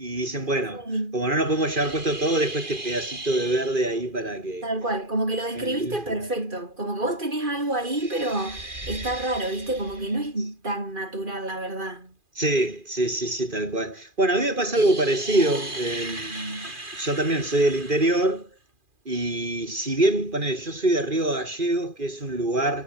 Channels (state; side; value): late; left; 2.4 ms